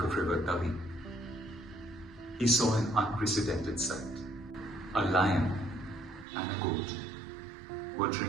of river Tavi, he saw an unprecedented sight. A lion and a goat were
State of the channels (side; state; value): left; drops out; at 6.2 s